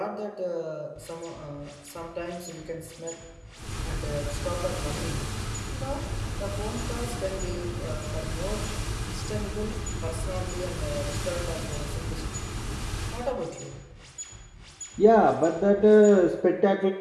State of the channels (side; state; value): both; identical; correlation 1.00